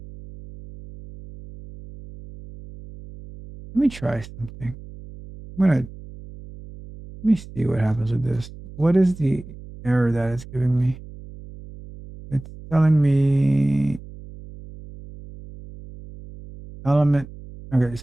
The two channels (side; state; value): right; noise; hum, 16 dB below the sound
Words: Let me try something. I'm gonna let me see what happens with this. What is the error that it's giving me? It's telling me element. Okay,